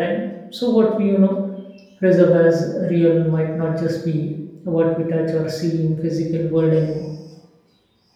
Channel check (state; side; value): identical; both; correlation 1.00